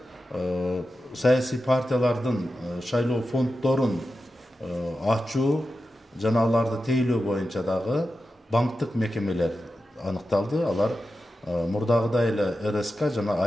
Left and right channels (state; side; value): normal; both; correlation 0.91